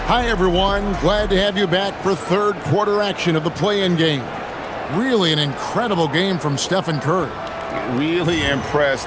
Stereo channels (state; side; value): identical; both; correlation 1.00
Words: Hi, everyone. Glad to have you back for third quarter action of the play-in game. Really an incredible game from Stephen Curry. Really